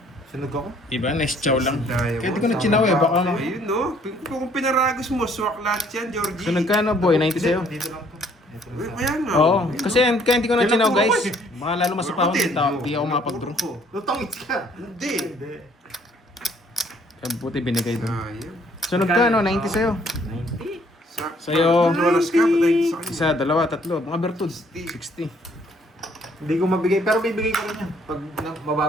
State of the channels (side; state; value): both; normal; correlation 0.62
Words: Sunog ako. Diba? Nice chow lang. Dayo Kaya di mo, ko nagchinaw eh. Baka Ayun, no? Kung pinaragos mo, swak lahat yan, Georgie. sunog ka no boy, 90 sa'yo. Dito lang to. Dito lang Uy, sa- kaya nga. Oo. Ayun, Kasi no? kaya hindi ko nagchinaw Yan ang guys. puro ko Baka lalo masapawan Buti. kita. Di ako mapag-draw. Lutongits ka. Hindi. Hindi. Kaya buti binigay doon. Sayang. Sunog ka no, 90 sa'yo. 90. Sa'yo. Dollars ka, patay sa kanya. Isa, dalawa, tatlo. Mga bertud. 60. Hindi ko mabigay, pero bibigay ko rin yan. Pag